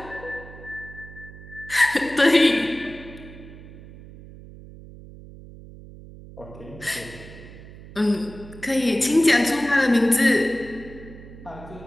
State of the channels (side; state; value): right; noise; hum, 17 dB below the sound